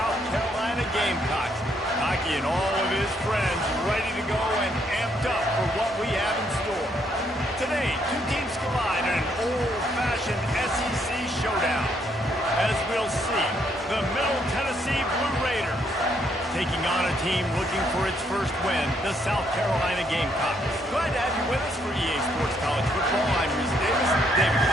Carolina Gamecocks. Hockey and all of his friends ready to go and amped up for what we have in store. Today, two teams collide in an old-fashioned SEC showdown. As we'll see, the Middle Tennessee Blue Raiders taking on a team looking for its first win, the South Carolina Gamecocks. Glad to have you with us for EA Sports College Football. I'm Reese Davis, David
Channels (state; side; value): normal; both; correlation 0.72